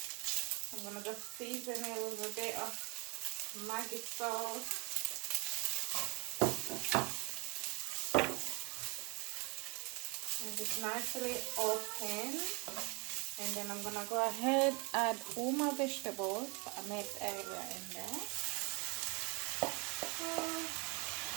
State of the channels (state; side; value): quieter; left; 28.9 dB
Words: gonna just season it with a bit of Maggi sauce. And just nicely open. And then I'm gonna go ahead add all my vegetables that I made earlier in there.